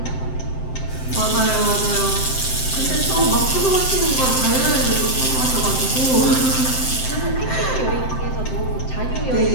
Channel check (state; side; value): late; right; 7.7 ms